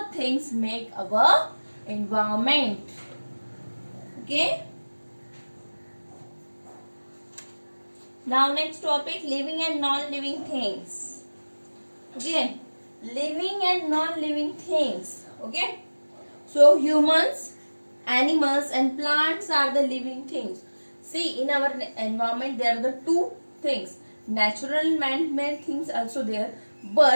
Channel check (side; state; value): both; inverted; correlation -1.00